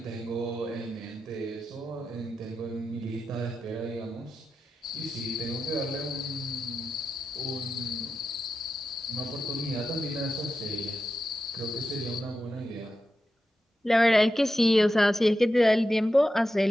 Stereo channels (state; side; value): normal; both; correlation 0.90